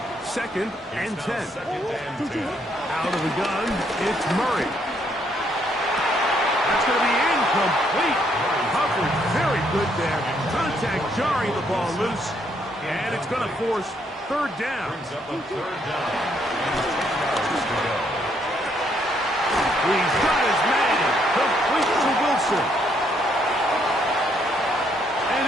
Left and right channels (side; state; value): both; normal; correlation 0.71